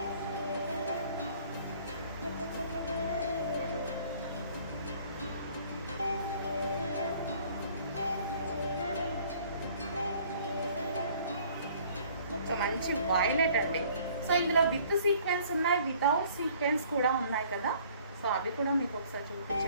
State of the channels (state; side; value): inverted; both; correlation -0.56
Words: మంచి వైలెట్ అండి. సో ఇందులో విత్ సీక్వెన్స్ ఉన్నాయి, వితౌట్ సీక్వెన్స్ కూడా ఉన్నాయి కదా. సో అవి కూడా మీకు ఒకసారి